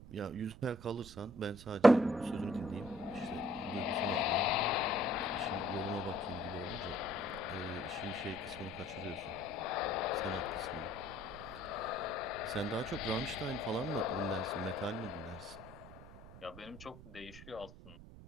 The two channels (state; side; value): noise; right; rumble, 16 dB below the sound